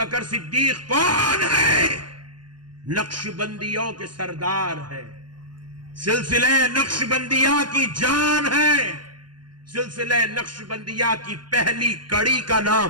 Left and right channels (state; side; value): late; left; 0.71 ms